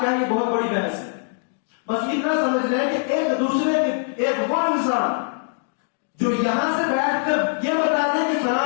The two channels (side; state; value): right; silent; digital silence